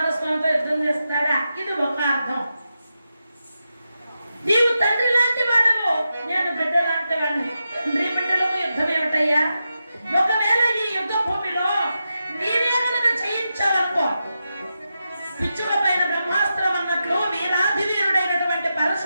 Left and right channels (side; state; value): both; inverted; correlation -0.89